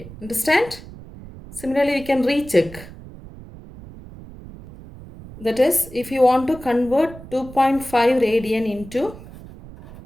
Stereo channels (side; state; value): right; noise; rumble, 17 dB below the sound